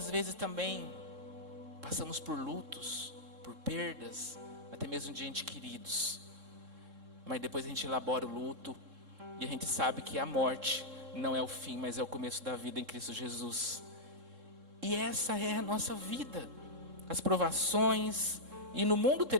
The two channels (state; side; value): late; left; 3.7 ms